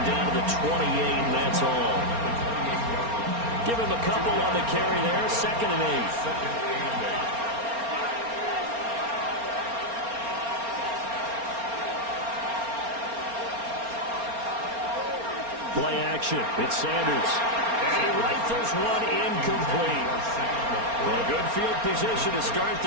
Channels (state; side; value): late; left; 4.3 ms